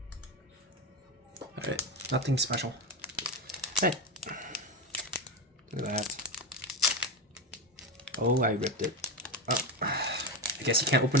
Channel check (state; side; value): normal; both; correlation 0.17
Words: Alright, nothing special. Hey, look at that. Oh, I ripped it. Oh, I guess you can't open